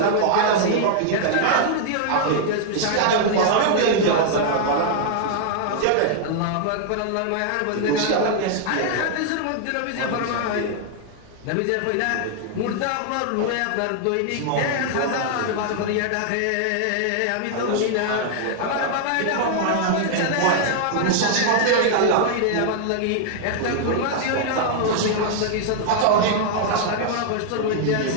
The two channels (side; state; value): both; different; correlation -0.01